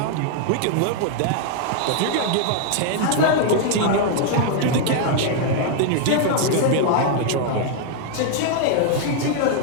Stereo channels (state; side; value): different; both; correlation 0.00